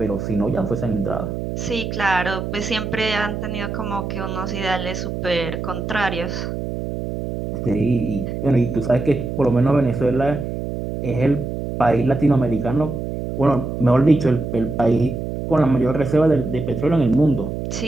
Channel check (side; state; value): right; noise; hum, 5 dB below the sound